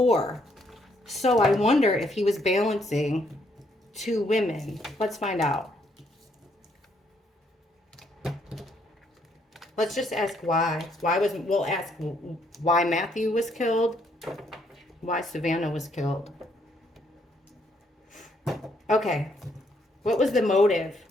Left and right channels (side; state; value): both; normal; correlation 0.71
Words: So I wonder if he was balancing two women. Let's find out. Let's just ask why. We'll ask why Matthew was killed, why Savannah was killed. Okay, what was the motive?